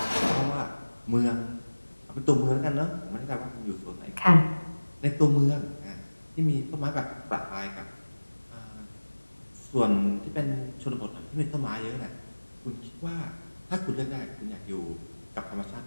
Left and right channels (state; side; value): inverted; both; correlation -1.00